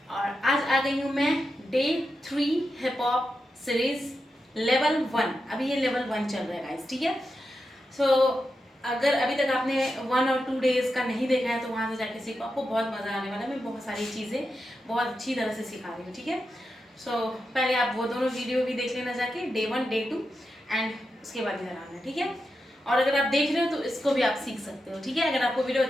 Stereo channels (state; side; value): normal; both; correlation 0.88